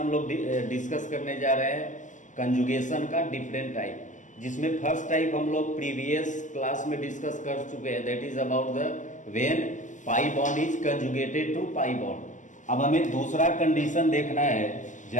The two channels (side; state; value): right; late; 0.36 ms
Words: लोग डिस्कस करने जा रहे हैं कंजुगेशन का डिफरेंट टाइप, जिसमें फर्स्ट टाइप हम लोग प्रीवियस क्लास में डिस्कस कर चुके हैं, that is about the when pi bond is conjugated to pi bond. अब हमें दूसरा कंडीशन देखना है